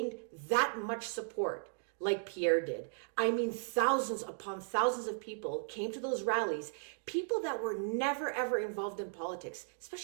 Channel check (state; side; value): silent; left; digital silence